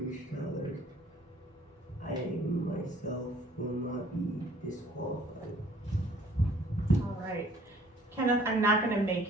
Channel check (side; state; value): both; normal; correlation 0.57